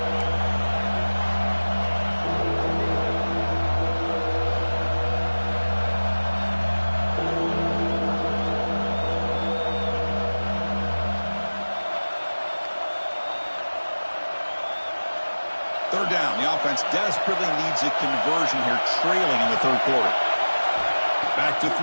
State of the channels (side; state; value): both; inverted; correlation -1.00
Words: offense desperately needs a conversion here, trailing in the third quarter. Back to